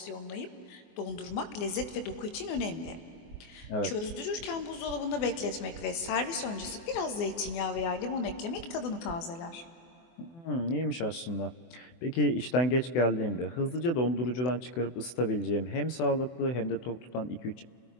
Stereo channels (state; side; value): late; right; 24 ms